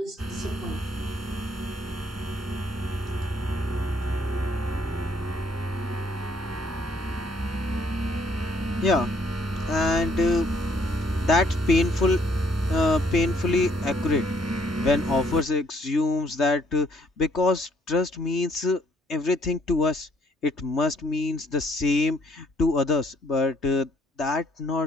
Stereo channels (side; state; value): both; normal; correlation 0.66